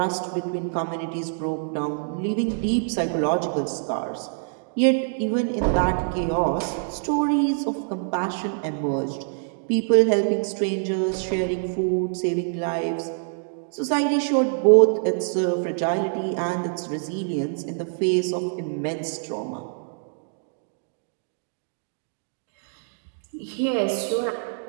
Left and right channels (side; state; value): left; silent; digital silence